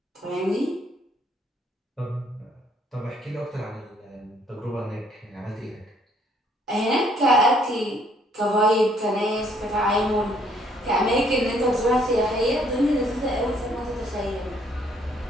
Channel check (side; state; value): both; normal; correlation 0.65